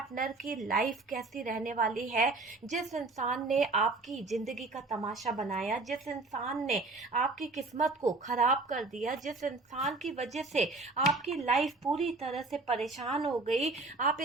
की लाइफ कैसी रहने वाली है। जिस इंसान ने आपकी जिंदगी का तमाशा बनाया, जिस इंसान ने आपकी किस्मत को खराब कर दिया, जिस इंसान की वजह से आपकी लाइफ पूरी तरह से परेशान हो गई, आप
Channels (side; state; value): left; quieter; 3.4 dB